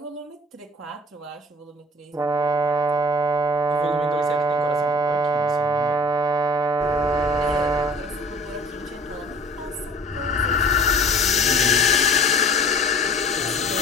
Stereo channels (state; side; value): normal; both; correlation 0.46